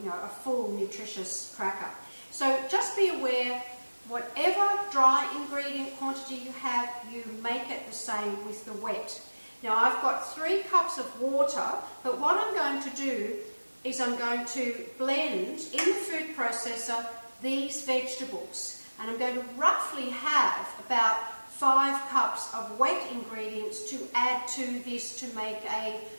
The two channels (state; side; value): inverted; both; correlation -1.00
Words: full nutritious cracker. So just be aware, whatever dry ingredient quantity you have, you make it the same with the wet. Now I've got 3 cups of water, but what I'm going to do is I'm going to blend in the food processor these vegetables, and I'm going to roughly have about 5 cups of wet ingredients to add to this to make a